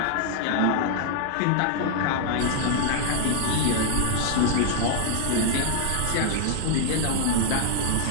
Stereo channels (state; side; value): different; both; correlation 0.00